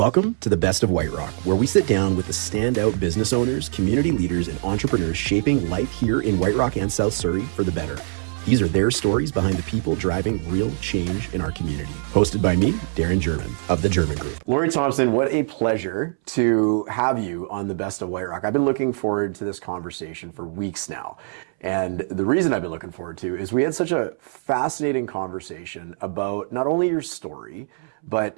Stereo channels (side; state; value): left; silent; 63 dB below the other